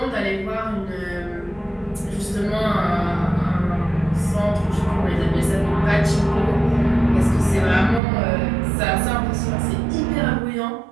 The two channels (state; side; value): drops out; left; at 8.0 s